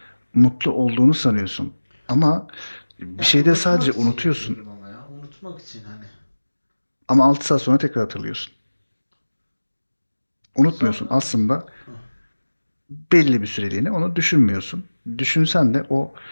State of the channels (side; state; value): both; inverted; correlation -1.00